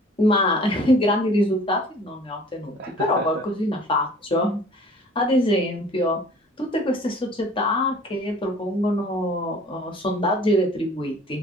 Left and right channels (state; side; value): normal; both; correlation 0.50